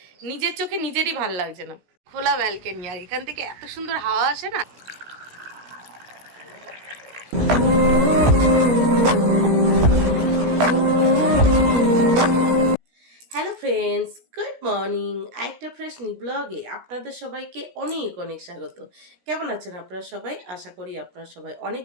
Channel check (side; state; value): left; late; 17 ms